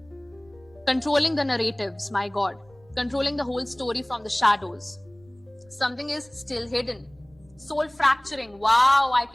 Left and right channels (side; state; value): right; noise; rumble, 29 dB below the sound